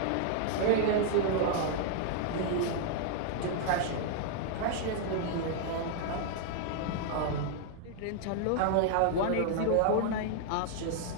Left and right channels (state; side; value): different; both; correlation 0.00